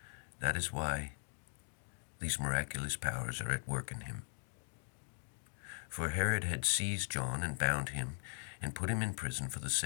That is why these miraculous powers are at work in him. For Herod had seized John and bound him and put him in prison for the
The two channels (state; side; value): silent; right; digital silence